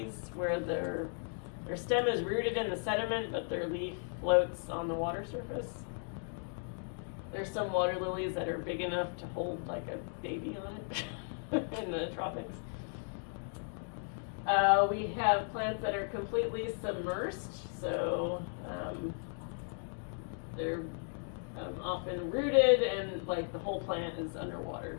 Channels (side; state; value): right; silent; 54 dB below the other